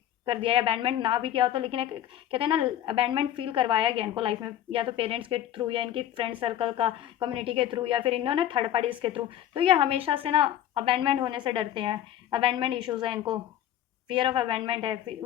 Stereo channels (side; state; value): right; quieter; 11.7 dB